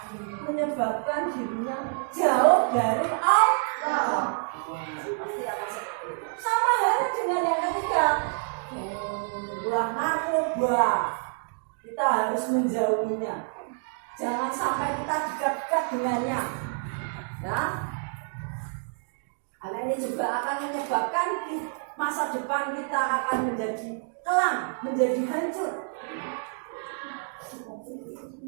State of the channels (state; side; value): silent; left; 59 dB below the other